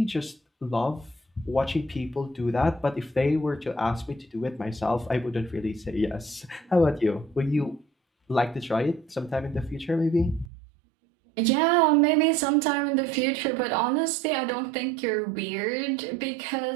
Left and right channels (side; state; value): left; drops out; at 10.5 s